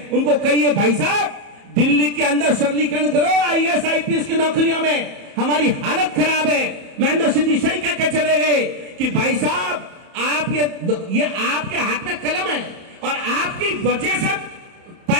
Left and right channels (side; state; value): left; late; 31 ms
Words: उनको कहिए भाई साहब दिल्ली के अंदर सरलीकरण करो, IAS IPS की नौकरियों में हमारी हालत खराब है। महेंद्र सिंह जी सही कह के चले गए कि भाई साहब आप ये आपके हाथ में कलम है और आपकी वजह से